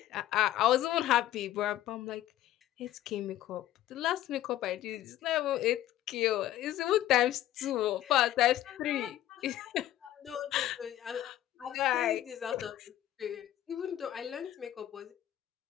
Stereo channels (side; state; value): right; quieter; 13.2 dB